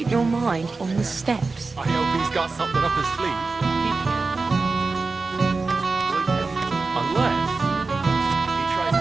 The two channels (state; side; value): quieter; left; 4.0 dB